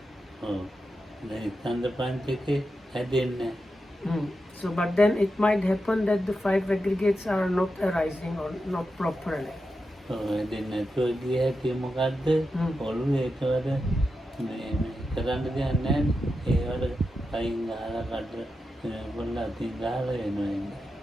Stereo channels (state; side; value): normal; both; correlation 0.89